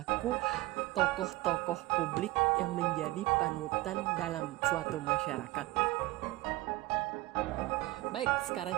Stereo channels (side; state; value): left; quieter; 18.8 dB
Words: tokoh-tokoh publik yang menjadi panutan dalam suatu masyarakat. Baik, sekarang